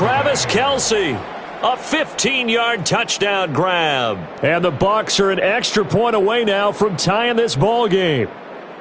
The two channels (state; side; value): identical; both; correlation 1.00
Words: Kelce. A 15-yard touchdown grab. And the Bucs are an extra point away now from tying this ball game.